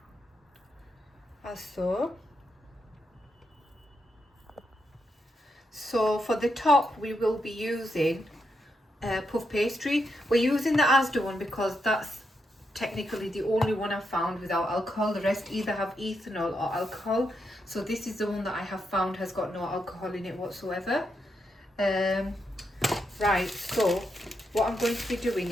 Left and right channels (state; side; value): normal; both; correlation 0.82